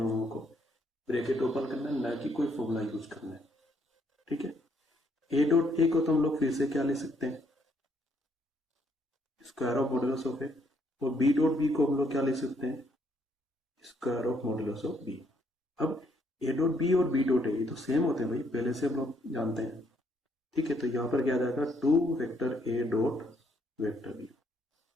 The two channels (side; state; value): both; normal; correlation 0.71